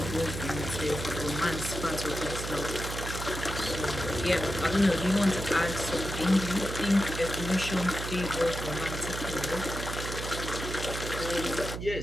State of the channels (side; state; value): right; noise; hum, 6 dB below the sound